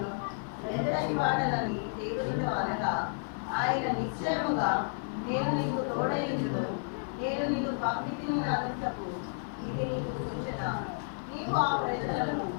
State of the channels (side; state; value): right; silent; digital silence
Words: ఎంతటి వాడనని దేవునితో అనగా, ఆయన నిశ్చయముగా నేను నీకు తోడైందును, నేను పంపితిని అనుటకు ఇది నీకు సూచన. నీవు ఆ ప్రజలను